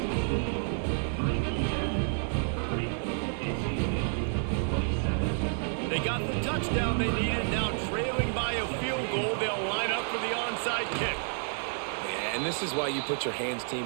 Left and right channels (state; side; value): silent; left; 57 dB below the other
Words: They got the touchdown they needed. Now trailing by a field goal, they'll line up for the onside kick. And this is why you put your hands